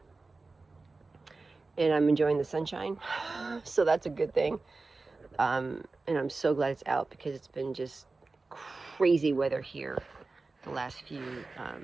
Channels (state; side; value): quieter; left; 3.7 dB